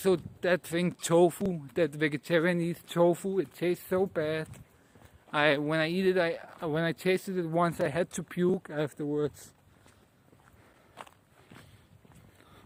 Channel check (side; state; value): both; identical; correlation 1.00